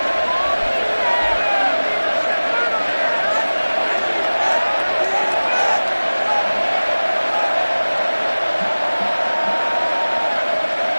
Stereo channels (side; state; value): both; inverted; correlation -1.00